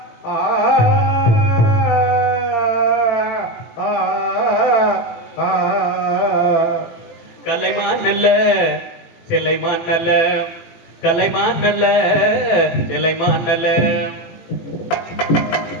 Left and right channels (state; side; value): late; right; 17 ms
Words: சிலைமான் நல்ல கலைமான் நல்ல சிலைமான் நல்ல